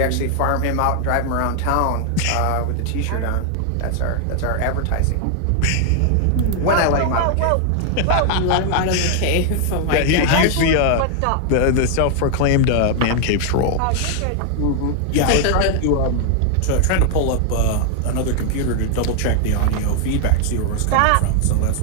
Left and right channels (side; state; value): both; different; correlation 0.00